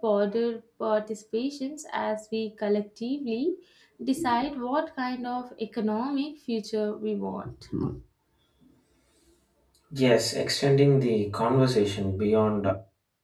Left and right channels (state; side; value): identical; both; correlation 1.00